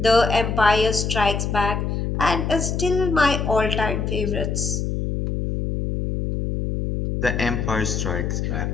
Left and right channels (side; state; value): left; noise; hum, 1 dB below the sound